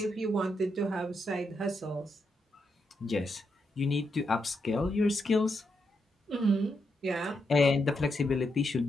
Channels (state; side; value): normal; both; correlation 0.82